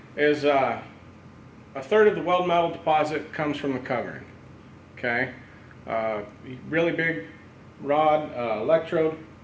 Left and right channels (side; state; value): both; identical; correlation 1.00